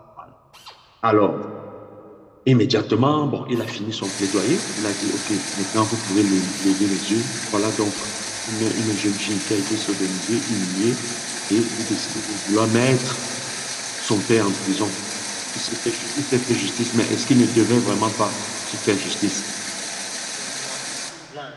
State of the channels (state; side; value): identical; both; correlation 1.00